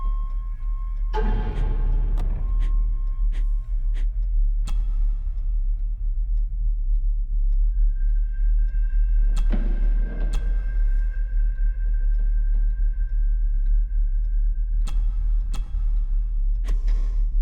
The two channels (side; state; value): both; identical; correlation 1.00